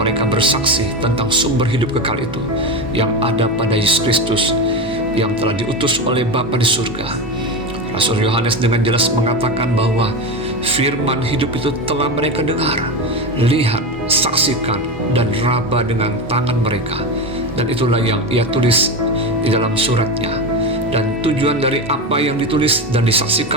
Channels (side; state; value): both; normal; correlation 0.19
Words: bersaksi tentang sumber hidup kekal itu yang ada pada Yesus Kristus yang telah diutus oleh Bapa di surga. Rasul Yohanes dengan jelas mengatakan bahwa firman hidup itu telah mereka dengar, lihat, saksikan, dan raba dengan tangan mereka. Dan itulah yang ia tulis di dalam suratnya. Dan tujuan dari apa yang ditulis dan